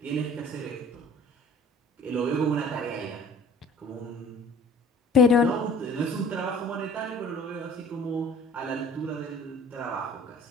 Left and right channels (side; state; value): both; normal; correlation 0.49